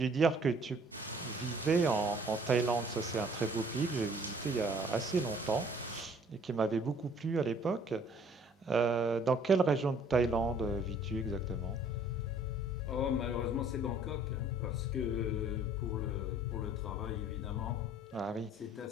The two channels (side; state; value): both; normal; correlation 0.56